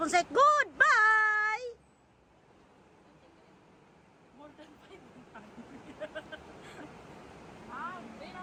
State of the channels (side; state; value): both; identical; correlation 1.00